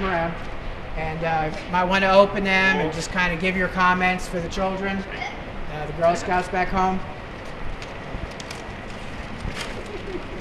around. And might want to open them and just kind of give your comments for the children, the Girl Scouts back home.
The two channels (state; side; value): identical; both; correlation 1.00